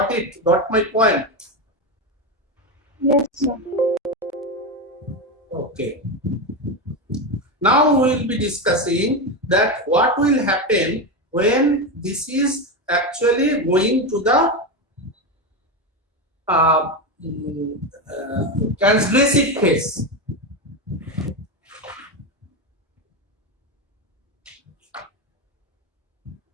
it, got my point. Yes, sir. Okay. Now we will be discussing that what will happen when this is actually going to the uh, transgressive phase.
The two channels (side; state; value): both; normal; correlation 0.14